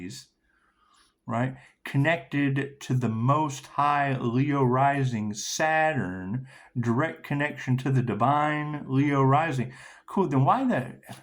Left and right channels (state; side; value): identical; both; correlation 1.00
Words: right, connected to the most high Leo rising Saturn, direct connection to the divine Leo rising, cool, then why that?